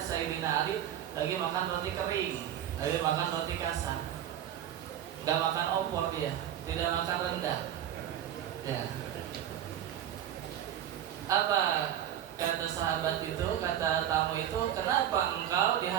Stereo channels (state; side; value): quieter; left; 10.8 dB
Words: Ali lagi makan roti kering, lagi makan roti kasar, nggak makan opor dia, tidak makan rendang. Ya. Apa kata sahabat itu, kata tamu itu, kenapa engkau di